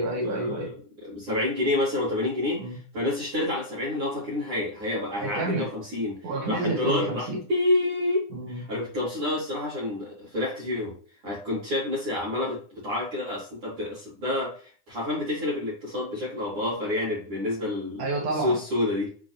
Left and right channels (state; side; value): late; left; 9.8 ms